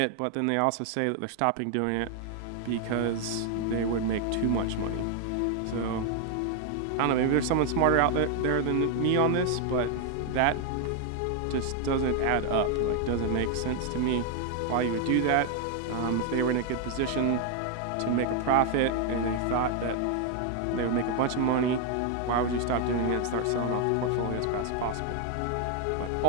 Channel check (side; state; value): both; different; correlation 0.01